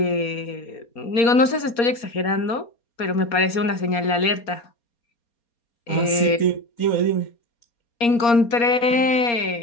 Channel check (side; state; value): right; late; 4.3 ms